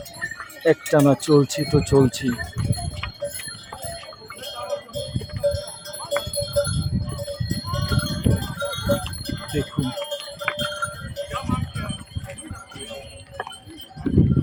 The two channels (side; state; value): both; identical; correlation 1.00